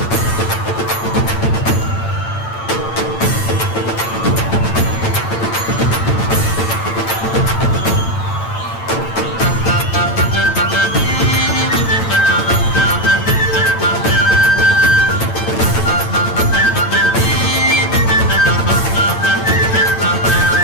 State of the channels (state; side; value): late; right; 8.9 ms